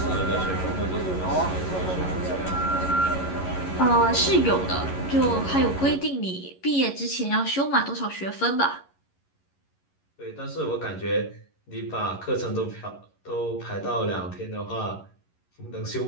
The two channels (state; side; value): late; right; 11 ms